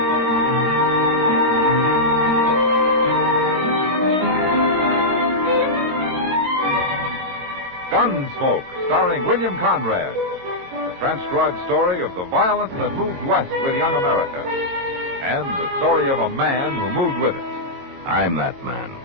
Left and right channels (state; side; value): late; left; 22 ms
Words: Gunsmoke, starring William Conrad. The transcribed story of the violence that moved west with young America. And the story of a man who moved with it. I'm that man.